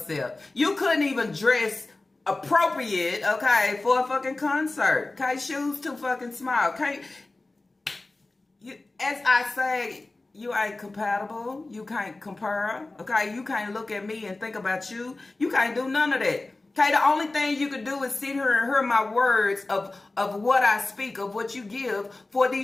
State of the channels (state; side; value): quieter; right; 3.1 dB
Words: You couldn't even dress appropriate, okay, for a fucking concert. Okay, shoes too fucking small. Okay, as I say, you ain't compatible. You can't compare. Okay, you can't look at me and think about you. You can't do none of that. Okay, the only thing you can do is sit here and hear my words of what I speak, of what you give for